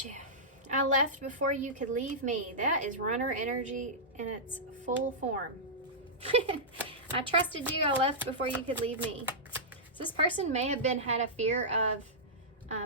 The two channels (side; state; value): both; normal; correlation -0.13